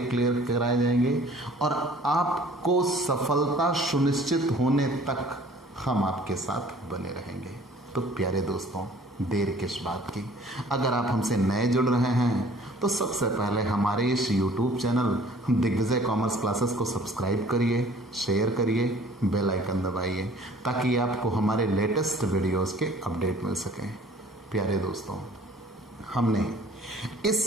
कराए जाएंगे और आपको सफलता सुनिश्चित होने तक हम आपके साथ बने रहेंगे। तो प्यारे दोस्तों, देर किस बात की? अगर आप हमसे नए जुड़ रहे हैं तो सबसे पहले हमारे इस YouTube channel Digvijay commerce classes को सब्सक्राइब करिए, शेयर करिए, बेल आइकन दबाइए ताकि आपको हमारे लेटेस्ट वीडियोस के अपडेट मिल सकें। प्यारे दोस्तों, हमने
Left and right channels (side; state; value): both; normal; correlation 0.52